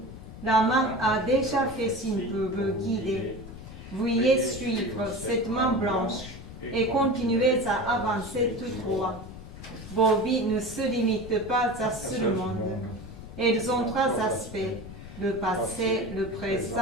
La main a déjà fait signe pour vous guider. Veuillez suivre cette main blanche et continuez à avancer tout droit. Vos vies ne se limitent pas à ce monde. Elles ont 3 aspects, le passé, le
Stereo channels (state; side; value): noise; left; rumble, 13 dB below the sound